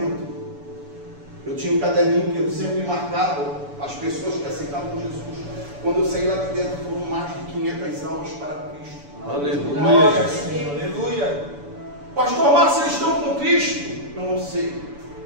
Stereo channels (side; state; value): left; late; 7.0 ms